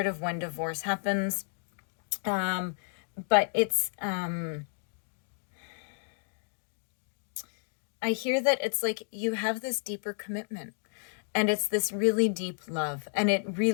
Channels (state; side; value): silent; right; 57 dB below the other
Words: of when divorce happens. But it's, I hear that it's you have this deeper commitment, and it's this really deep love, and it